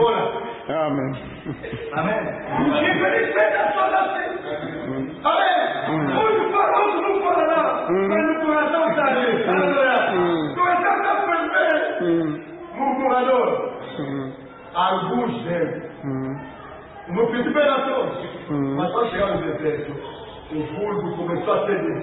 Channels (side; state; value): both; identical; correlation 1.00